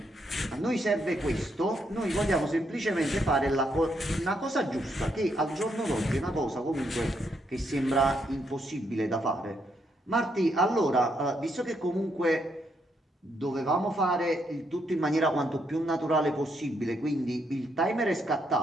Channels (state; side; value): normal; both; correlation 0.76